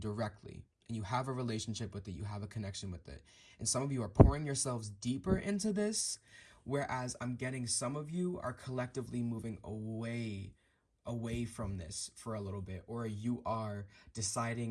And you have a relationship with it, you have a connection with it. And some of you are pouring yourselves deeper into this, whereas I'm getting some of you are collectively moving away from this for a little bit, or you are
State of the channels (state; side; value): identical; both; correlation 1.00